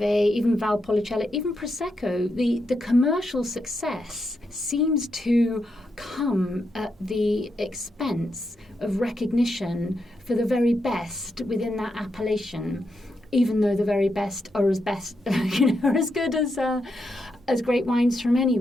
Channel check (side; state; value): both; normal; correlation 0.83